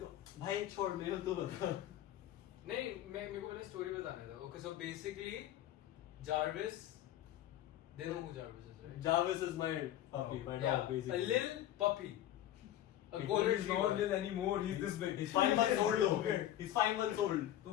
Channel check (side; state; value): right; quieter; 12.6 dB